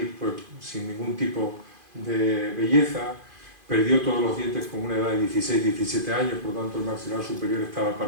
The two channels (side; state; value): left; late; 2.5 ms